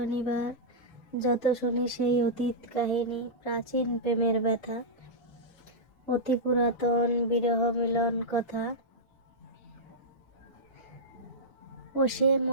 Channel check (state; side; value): late; right; 2.0 ms